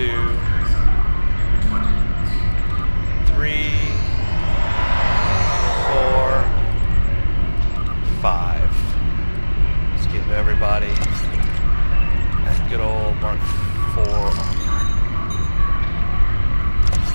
3, 4, 5. Let's give everybody that good old Mark 4 armor.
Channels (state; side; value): inverted; both; correlation -1.00